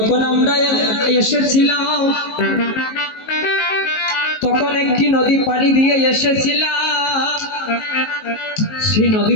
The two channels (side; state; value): right; late; 19 ms